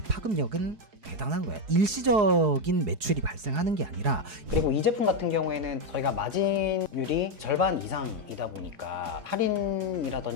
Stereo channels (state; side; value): late; left; 4.7 ms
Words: 파급력은 대단한 거야. 일시적인 매출이 발생하는 게 아니라, 그리고 이 제품 같은 경우에는 저희가 마진율이 절반 이상이다 보니까